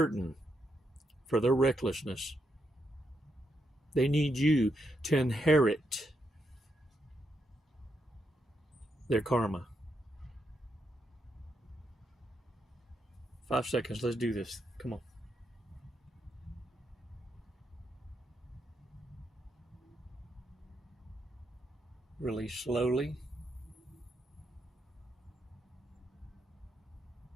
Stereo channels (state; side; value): normal; both; correlation 0.81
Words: for their recklessness. They need you to inherit their karma. 5 seconds. Let's do this. Come on. Release slowly.